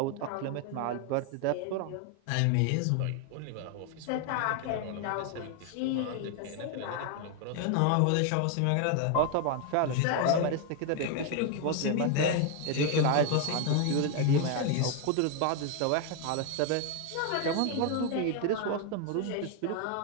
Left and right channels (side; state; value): both; different; correlation 0.01